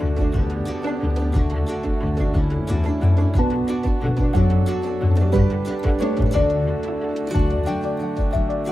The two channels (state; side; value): normal; both; correlation 0.93